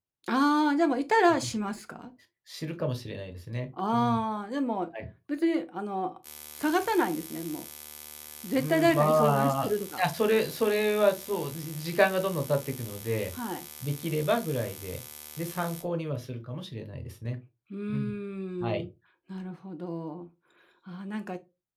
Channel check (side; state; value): both; identical; correlation 1.00